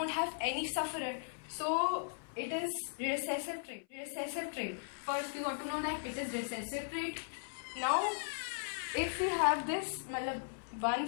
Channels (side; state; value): right; silent; 53 dB below the other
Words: have any sufferer. So it is recessive trait. Recessive trait. First we got to know that it is recessive trait. Now if we have this, 1